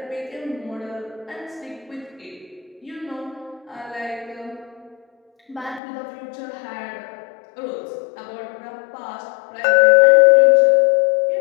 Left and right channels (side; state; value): right; drops out; at 5.8 s